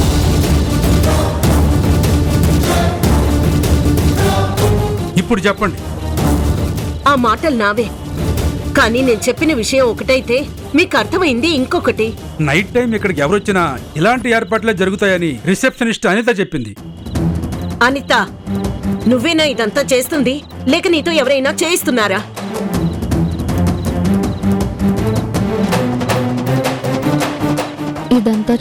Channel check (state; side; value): identical; both; correlation 1.00